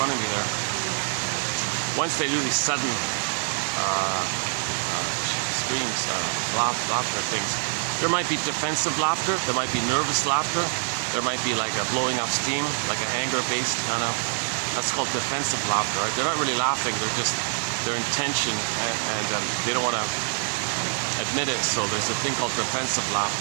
of me there. Once they do these sudden screams, laughter things, there might be defensive laughter, there might be nervous laughter, there might be like a blowing up steam, like an anger-based kind of, that's called defensive laughter, right? They're not really laughing, they're in tension, and they don't want to admit it, so there's a thing called defensive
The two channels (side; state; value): left; silent; digital silence